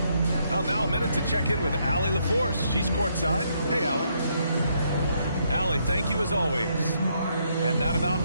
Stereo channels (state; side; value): inverted; both; correlation -0.74